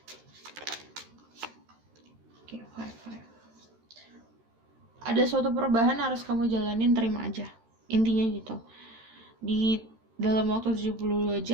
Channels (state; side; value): late; left; 13 ms